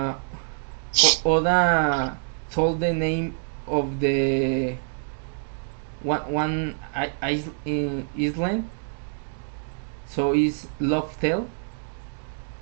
Oda told the name of the one island, so it's Loftel.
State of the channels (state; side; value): silent; left; digital silence